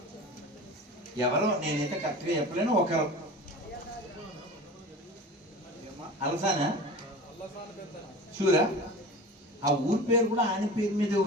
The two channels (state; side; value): normal; both; correlation 0.35